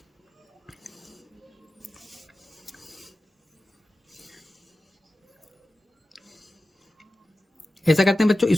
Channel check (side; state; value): both; normal; correlation 0.94